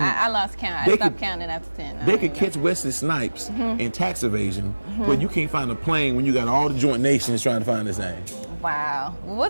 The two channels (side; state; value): both; inverted; correlation -1.00